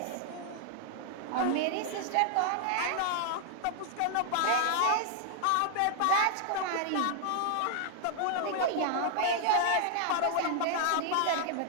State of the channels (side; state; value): both; different; correlation -0.01